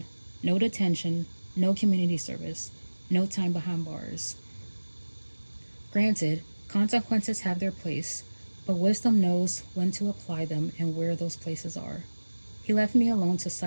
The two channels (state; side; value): inverted; both; correlation -1.00